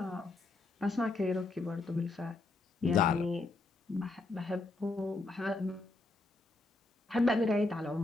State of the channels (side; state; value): right; quieter; 3.2 dB